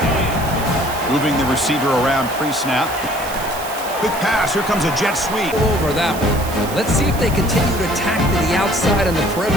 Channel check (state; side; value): noise; right; hiss, 12 dB below the sound